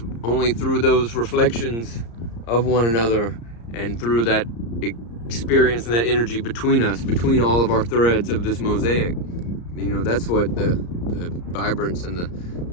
only through those reflections of one another and through that experience and that energy between us, between all of our threads of this mosaic. You know, that's what the vibrance and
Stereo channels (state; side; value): late; right; 34 ms